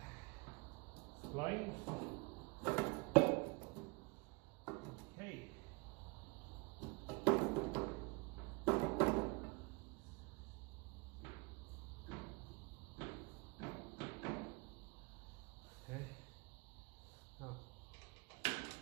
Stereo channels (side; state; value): left; quieter; 28.5 dB